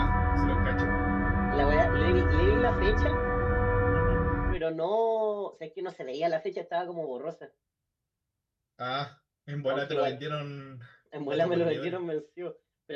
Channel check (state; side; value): identical; both; correlation 1.00